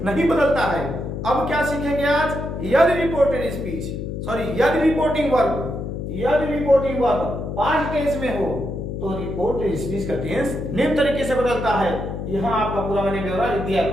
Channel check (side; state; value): left; noise; hum, 5 dB below the sound